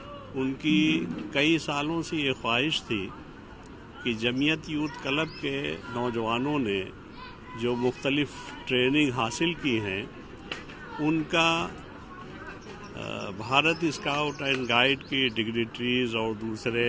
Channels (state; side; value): identical; both; correlation 1.00